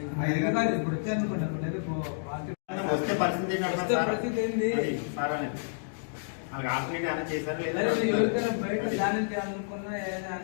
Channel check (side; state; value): right; silent; digital silence